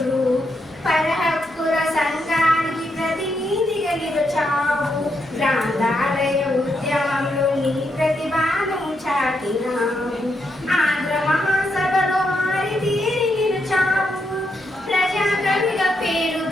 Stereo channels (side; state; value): both; normal; correlation 0.80